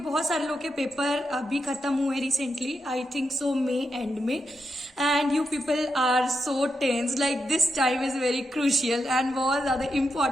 सारे लोग के paper अभी खत्म हुए recently, I think so May end में, and you people are so tense like this time is very crucial and बहुत ज्यादा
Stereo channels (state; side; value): normal; both; correlation 0.85